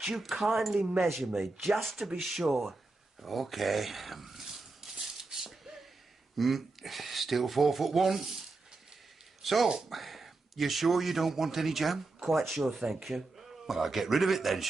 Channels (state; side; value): quieter; left; 3.4 dB